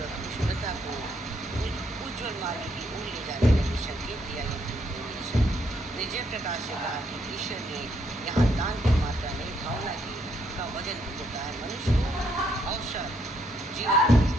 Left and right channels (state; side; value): normal; both; correlation 0.73